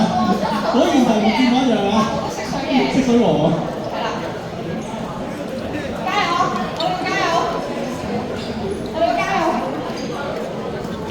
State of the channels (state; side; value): identical; both; correlation 1.00